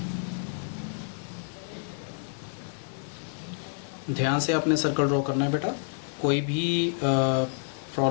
ध्यान से आपने सर्कल ड्रॉ करना है बेटा, कोई भी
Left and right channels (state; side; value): silent; right; digital silence